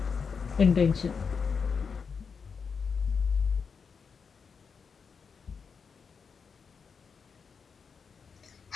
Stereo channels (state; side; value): quieter; right; 5.7 dB